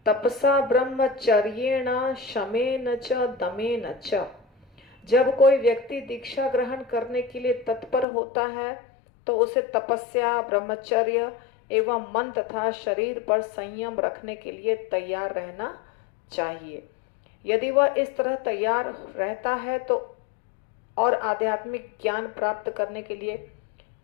तपसा ब्रह्मचर्येण शमेन च दमेन च। जब कोई व्यक्ति दीक्षा ग्रहण करने के लिए तत्पर होता है तो उसे तपस्या, ब्रह्मचर्य एवं मन तथा शरीर पर संयम रखने के लिए तैयार रहना चाहिए। यदि वह इस तरह तैयार रहता है तो और आध्यात्मिक ज्ञान प्राप्त करने के लिए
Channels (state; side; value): drops out; right; at 8.1 s